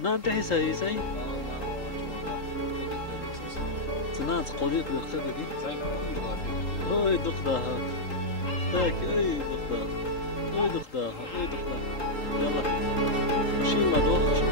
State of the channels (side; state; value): right; late; 3.8 ms